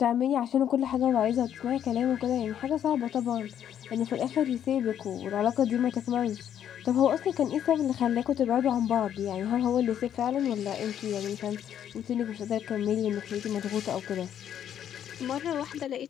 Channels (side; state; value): right; quieter; 9.8 dB